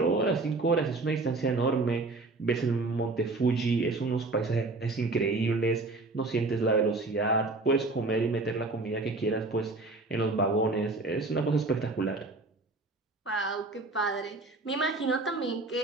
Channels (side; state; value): left; quieter; 3.3 dB